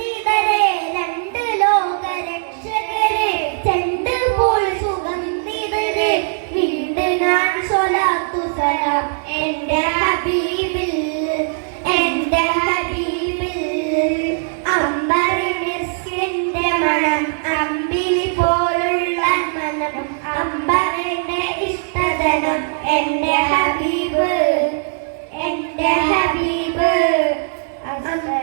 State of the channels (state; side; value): silent; left; 64 dB below the other